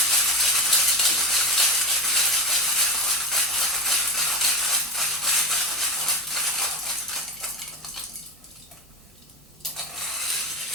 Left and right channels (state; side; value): normal; both; correlation 0.21